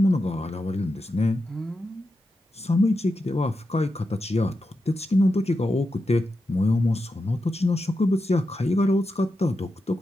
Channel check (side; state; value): both; normal; correlation 0.88